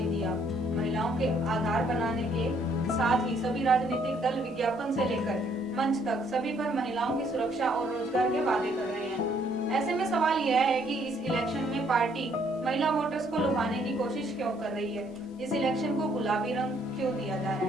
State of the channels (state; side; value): normal; both; correlation 0.66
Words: दिया। महिलाओं के आधार बनाने के साथ ही सभी राजनीतिक दल विज्ञापन से लेकर मंच तक सभी पर महिलाओं की सुरक्षा और रोजगार के वादे कर रहे हैं। ऐसे में सवाल यह है कि इस इलेक्शन में पार्टी महिला वोटर्स को लुभाने की कोशिश क्यों कर रही है? इस इलेक्शन को गुलाबी रंग क्यों दिया जा रहा